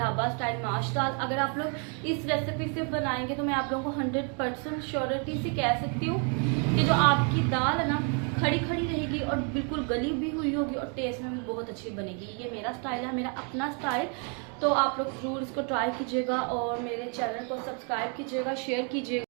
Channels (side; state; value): left; quieter; 39.1 dB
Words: स्टाइल माश दाल। अगर आप लोग इस रेसिपी से बनाएंगे तो मैं आप लोगों को 100% श्योरिटी से कह सकती हूँ कि जो आपकी दाल है ना, खड़ी खड़ी रहेगी और बिल्कुल गली भी हुई होगी और टेस्ट में भी बहुत अच्छी बनेगी। ये मेरा स्टाइल है, मेरा अपना स्टाइल। तो आप लोग ज़रूर इसको ट्राई कीजिएगा और मेरे चैनल को सब्सक्राइब कीजिएगा, शेयर कीजिएगा।